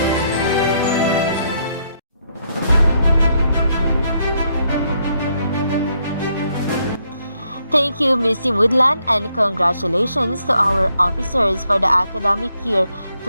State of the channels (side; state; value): both; inverted; correlation -0.75